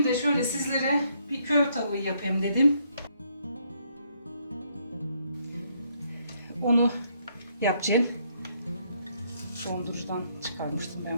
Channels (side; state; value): both; inverted; correlation -0.71